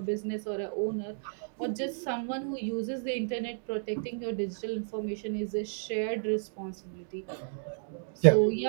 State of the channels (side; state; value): left; silent; digital silence